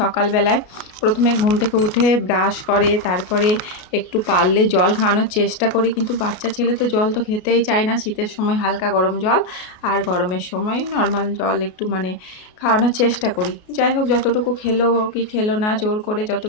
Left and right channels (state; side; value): late; right; 33 ms